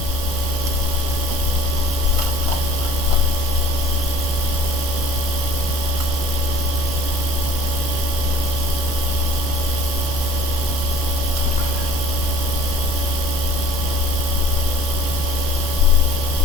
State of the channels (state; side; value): normal; both; correlation 0.51